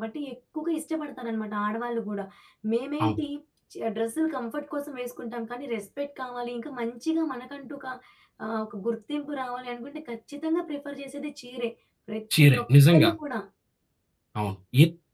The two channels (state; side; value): identical; both; correlation 1.00